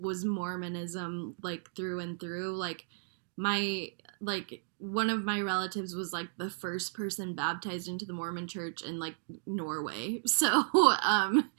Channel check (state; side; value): silent; left; digital silence